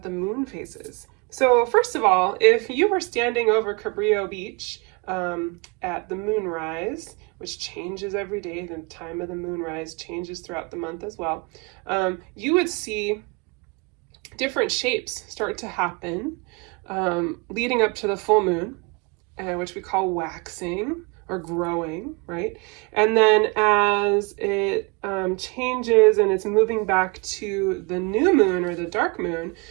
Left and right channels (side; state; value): left; quieter; 28.8 dB